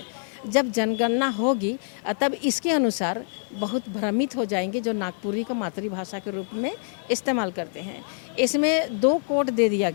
जब जनगणना होगी तब इसके अनुसार बहुत भ्रमित हो जाएंगे जो नागपुरी को मातृभाषा के रूप में इस्तेमाल करते हैं। इसमें 2 कोड दे दिया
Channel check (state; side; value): silent; right; digital silence